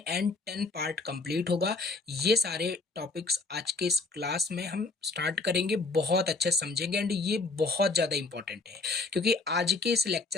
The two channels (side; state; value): right; quieter; 3.6 dB